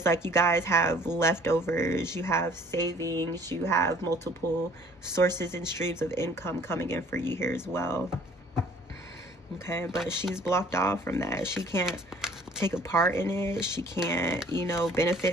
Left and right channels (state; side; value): normal; both; correlation 0.55